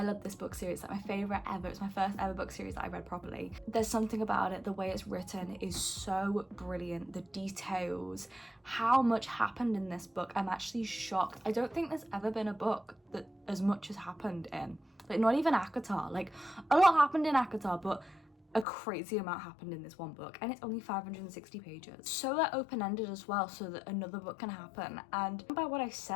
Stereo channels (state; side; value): drops out; right; at 18.7 s